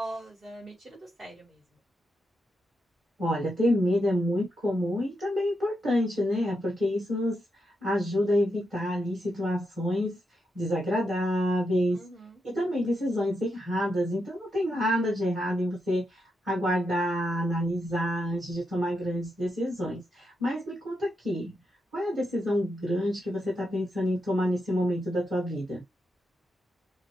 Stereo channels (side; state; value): both; normal; correlation 0.84